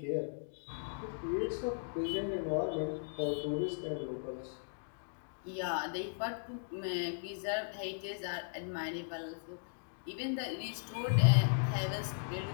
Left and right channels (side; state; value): right; silent; digital silence